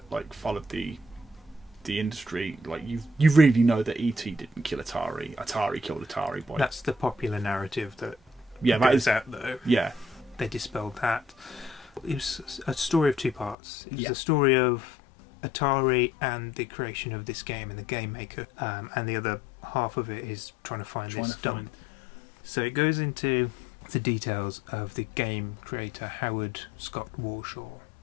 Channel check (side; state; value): right; drops out; at 13.6 s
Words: followed the industry, you really know that E.T. didn't kill Atari. Atari killed Atari. That's the popular narrative that goes out though. Yeah, they dispelled that. It was a story of two parts. It was a story of Atari and the creation of this game and the Game Maker, and the other half of it is trying to find this dump. So it goes into the details of the game creator Howard Scott Warshaw,